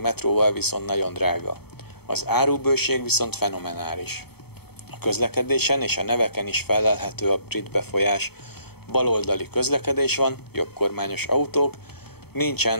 metróval viszont nagyon drága. Az árubőség viszont fenomenális. A közlekedésen és a neveken is fellelhető a brit befolyás. Baloldali közlekedés van, jobbkormányos autók,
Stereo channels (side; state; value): right; late; 0.96 ms